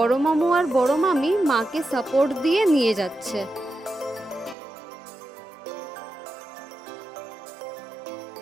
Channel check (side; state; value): left; drops out; at 4.5 s